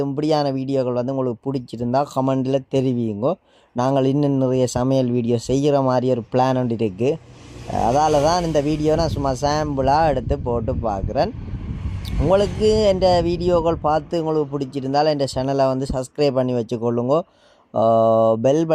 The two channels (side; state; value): both; identical; correlation 1.00